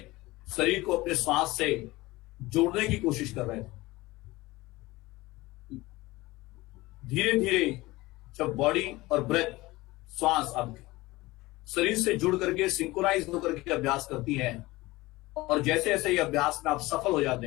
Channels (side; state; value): right; quieter; 20.1 dB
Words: शरीर को अपने श्वास से जोड़ने की कोशिश कर रहे थे। धीरे धीरे जब बॉडी और ब्रेथ श्वास आपके शरीर से जुड़ करके सिंक्रोनाइज होकर के अभ्यास करती है और जैसे जैसे ये अभ्यास में आप सफल हो जाते